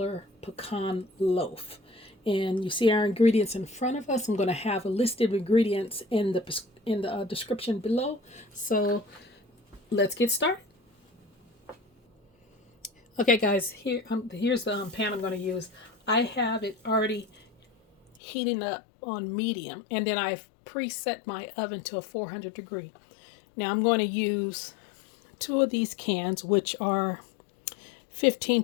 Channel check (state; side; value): drops out; right; at 18.1 s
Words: pecan loaf. And you see our ingredients in front of us. I'm going to have a list of ingredients in the description below. So let's get started. Okay guys, here's the pan I'm going to use. I have it already heating up on medium, and then I've preset my oven to a 400 degree. Now I'm going to use two of these cans, which are